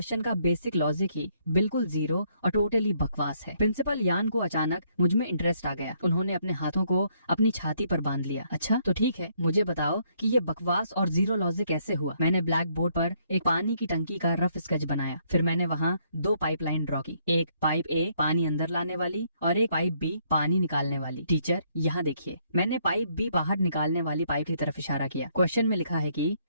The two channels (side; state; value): both; inverted; correlation -0.70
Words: का बेसिक लॉजिक ही बिल्कुल जीरो और टोटली बकवास है। प्रिंसिपल यान को अचानक मुझ में इंटरेस्ट आ गया। उन्होंने अपने हाथों को अपनी छाती पर बांध लिया। अच्छा तो ठीक है, मुझे बताओ कि ये बकवास और जीरो लॉजिक कैसे हुआ। मैंने ब्लैक बोर्ड पर एक पानी की टंकी का रफ स्केच बनाया। फिर मैंने वहाँ 2 पाइपलाइन ड्रॉ की, एक पाइप ए पानी अंदर लाने वाली और एक पाइप बी पानी निकालने वाली। टीचर, यहाँ देखिए, मैंने पाइप बी बाहर निकालने वाली पाइप की तरफ इशारा किया। क्वेश्चन में लिखा है कि